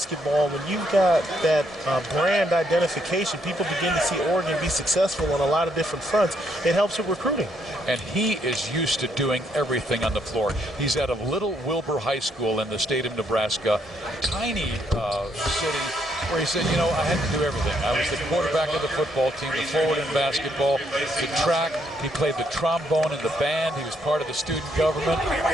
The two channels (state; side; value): normal; both; correlation 0.73